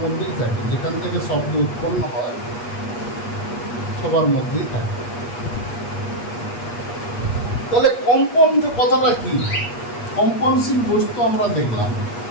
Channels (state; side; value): late; right; 8.4 ms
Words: মধ্যেই থাকে, যেখান থেকে শব্দ উৎপন্ন হয় সবার মধ্যেই থাকে। তাহলে কম্পন যে কথাটা কি, কম্পনশীল বস্তু আমরা দেখলাম।